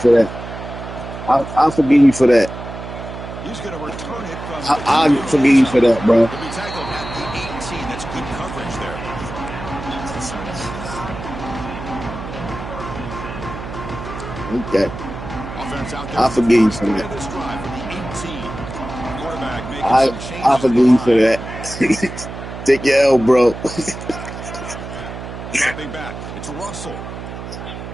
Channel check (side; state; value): right; noise; hum, 10 dB below the sound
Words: that. I'll forgive you for that. He's going to return it from I'll forgive you for that, bro. He'll be tackled at the 18. That's good coverage there. Okay. I'll forgive you for that. I'll forgive you for that. Take your L, bro. Dropping back. It's Russell.